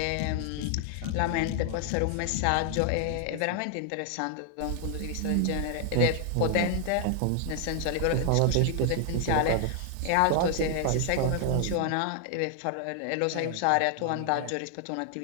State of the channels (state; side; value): different; both; correlation 0.00